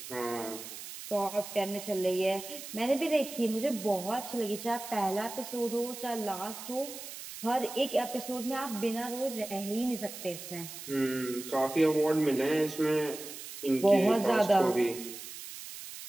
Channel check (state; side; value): noise; right; hiss, 11 dB below the sound